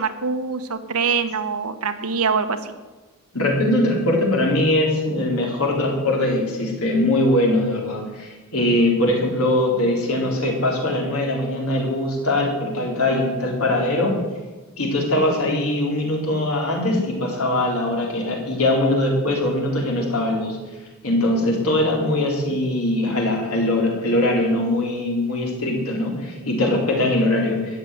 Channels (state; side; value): normal; both; correlation 0.24